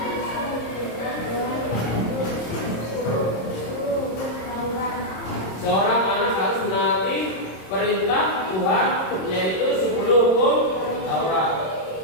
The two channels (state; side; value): late; right; 26 ms